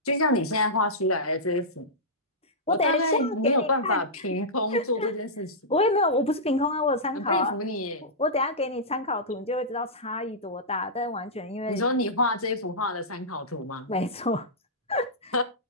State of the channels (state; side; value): normal; both; correlation -0.13